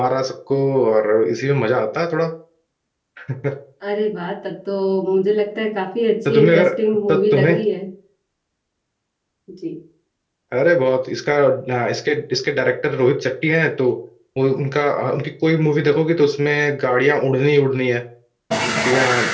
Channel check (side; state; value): both; identical; correlation 1.00